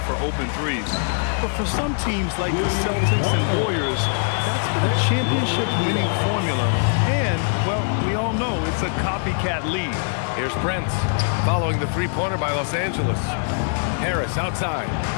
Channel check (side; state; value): right; silent; digital silence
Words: for open threes. But for some teams like the Celtics and Warriors, that's been a championship-winning formula. And, well, we all know it's a copycat league. Here's Prince, following the three-pointer by Los Angeles. Harris outside.